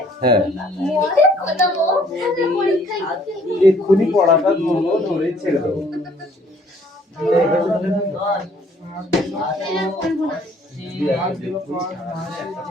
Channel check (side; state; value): both; normal; correlation 0.60